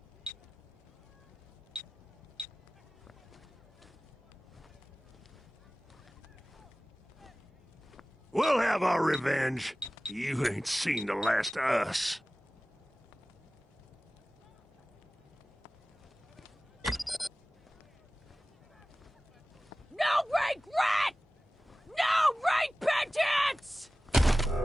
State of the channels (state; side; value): normal; both; correlation 0.97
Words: We'll have our revenge. You ain't seen the last of us. No regret! No repentance!